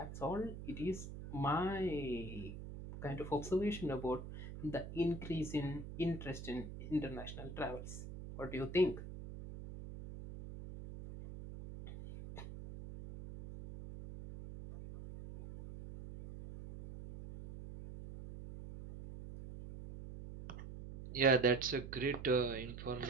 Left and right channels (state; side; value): noise; right; hum, 10 dB below the sound